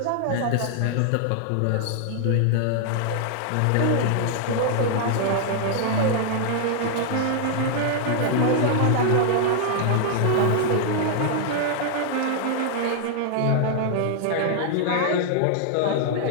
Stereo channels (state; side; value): different; both; correlation 0.00